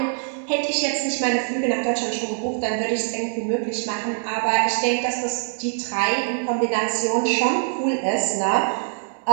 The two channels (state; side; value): silent; left; digital silence